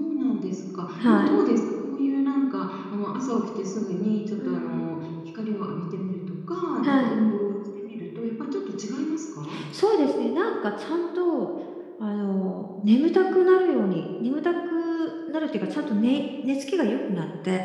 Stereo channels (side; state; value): both; identical; correlation 1.00